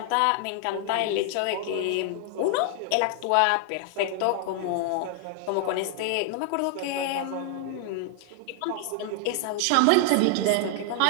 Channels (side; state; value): both; different; correlation 0.00